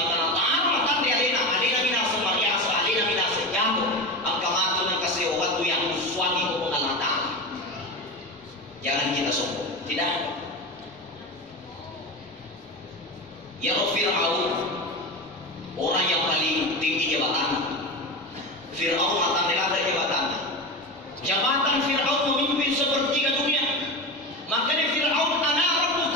ta'ala matan di alena minasa mariasa alena minasa jamu. Ang kamatu ng kasewatu yang suami ko Allah Ta'ala. Jangan kita sombong. Tidak. Ya Fir'aun, orang yang paling tinggi jabatan. Fir'aun mata melata jabatan. Jabatan Fir'aun memimpin sepertiga dunia. Makanya Fir'aun ana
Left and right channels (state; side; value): normal; both; correlation 0.23